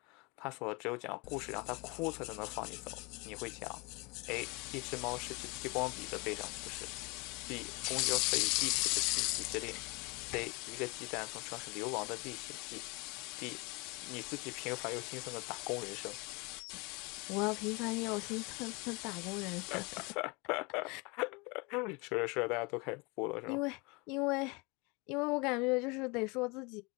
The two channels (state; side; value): quieter; right; 28.3 dB